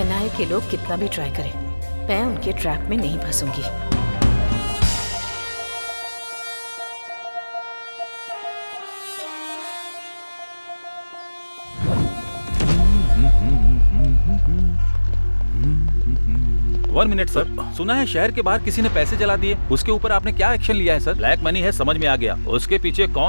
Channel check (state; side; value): inverted; both; correlation -1.00